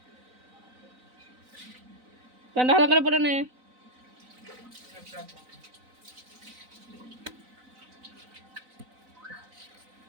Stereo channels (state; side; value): late; left; 3.9 ms